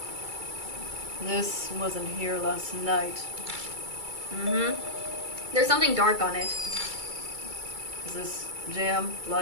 This wasn't here last night. Mm-hmm. There's something dark on it. Is this jam?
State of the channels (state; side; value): late; left; 2.3 ms